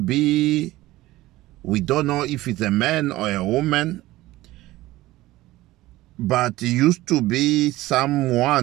we don't know if it's a man or a woman, but it used to be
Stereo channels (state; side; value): quieter; left; 17.5 dB